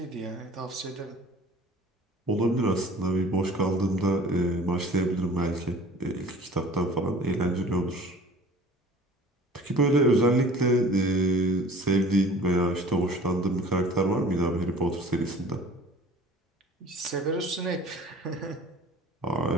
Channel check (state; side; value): normal; both; correlation 0.45